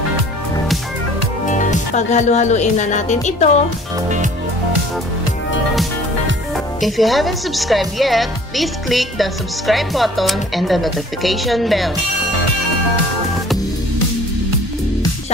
Paghalo-haluin na natin ito. If you haven't subscribed yet, please click the subscribe button and the notification bell.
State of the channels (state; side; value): normal; both; correlation 0.51